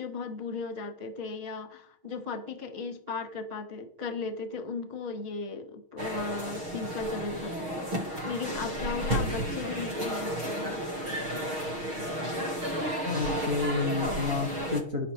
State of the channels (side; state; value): left; late; 6.4 ms